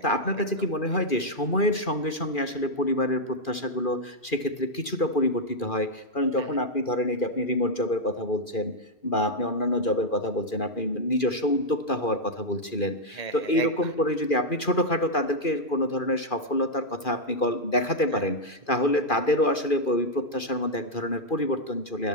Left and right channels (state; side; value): late; right; 2.4 ms